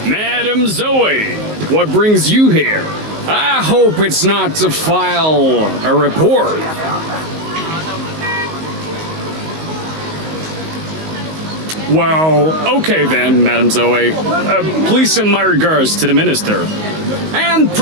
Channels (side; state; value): left; late; 19 ms